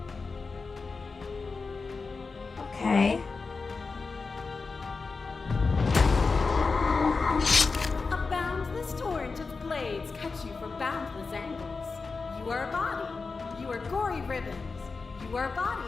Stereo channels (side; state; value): right; quieter; 4.3 dB